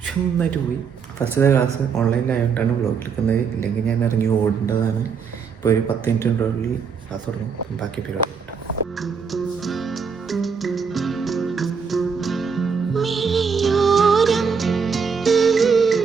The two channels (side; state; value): left; quieter; 6.0 dB